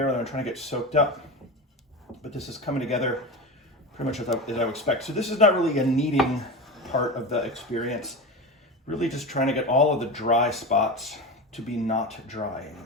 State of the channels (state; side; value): normal; both; correlation 0.24